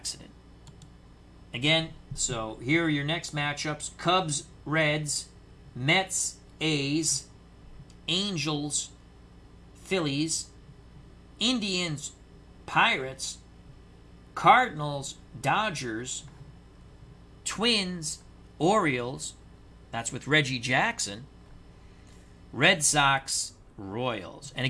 Again, so here are your next matchups. Cubs, Reds, Mets, A's, Angels, Phillies, Indians, Pirates, Cardinals, Dodgers, Twins, Orioles, that's with Reggie Jackson, Red Sox, Royals. And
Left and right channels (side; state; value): both; identical; correlation 1.00